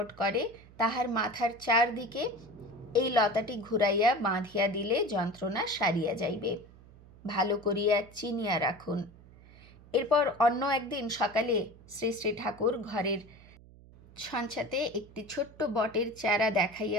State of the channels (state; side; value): noise; right; hum, 22 dB below the sound